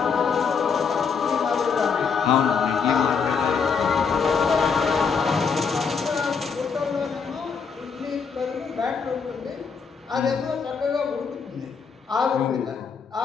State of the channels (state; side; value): quieter; right; 5.9 dB